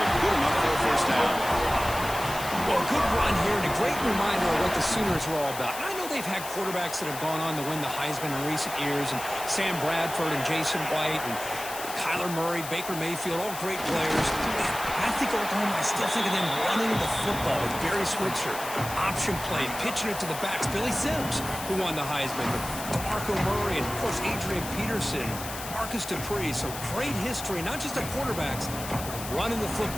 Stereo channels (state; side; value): noise; left; hiss, 10 dB below the sound